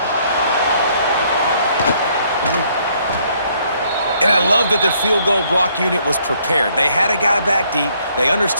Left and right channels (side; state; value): both; inverted; correlation -0.66